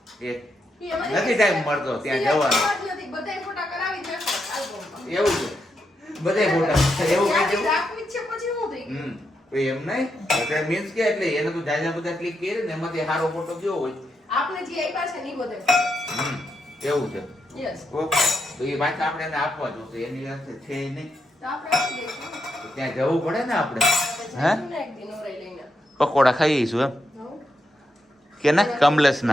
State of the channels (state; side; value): normal; both; correlation 0.83